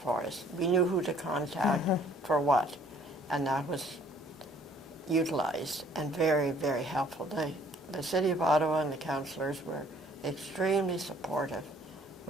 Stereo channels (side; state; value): both; normal; correlation 0.59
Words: for us. We knew who to contact for what, and that was utilized and very, very helpful. The City of Ottawa and the councillors were extremely supportive,